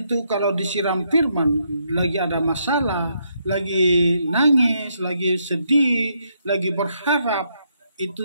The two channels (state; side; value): inverted; both; correlation -0.76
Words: kalau disiram firman, lagi ada masalah, lagi nangis, lagi sedih, lagi berharap,